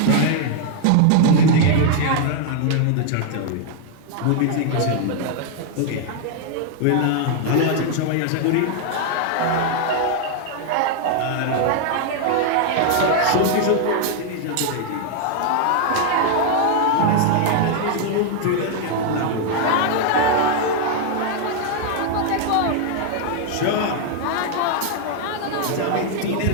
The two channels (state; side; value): different; both; correlation 0.00